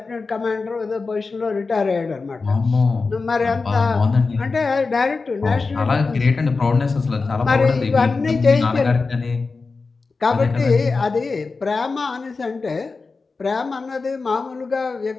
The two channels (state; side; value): quieter; right; 4.2 dB